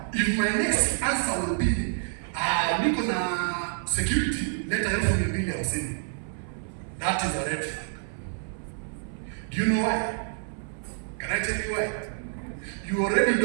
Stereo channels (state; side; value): silent; left; 56 dB below the other